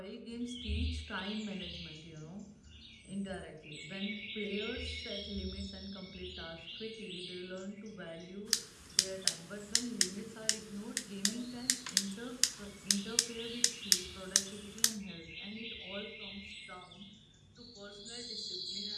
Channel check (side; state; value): both; identical; correlation 1.00